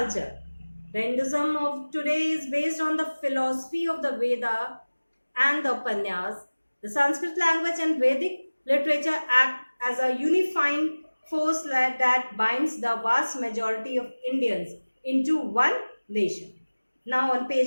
The Hinduism of today is based on the philosophy of the Veda and the Upanyas. The Sanskrit language and Vedic literature act as a unifying force that binds the vast majority of Indians into one nation. Now on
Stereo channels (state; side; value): inverted; both; correlation -1.00